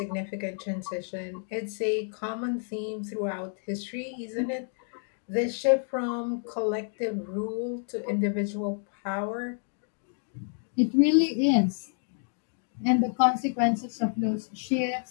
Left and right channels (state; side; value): silent; right; 58 dB below the other